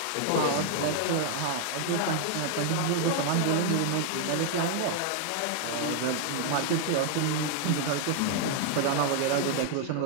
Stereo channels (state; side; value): different; both; correlation 0.00